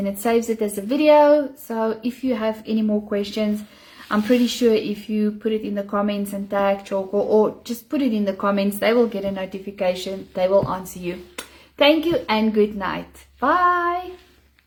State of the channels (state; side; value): identical; both; correlation 1.00